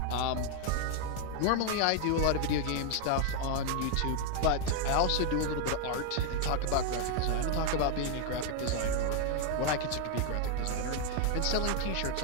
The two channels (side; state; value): both; different; correlation 0.01